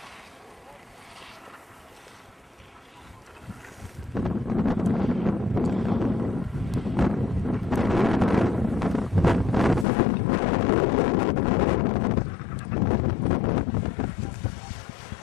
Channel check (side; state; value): right; drops out; at 9.9 s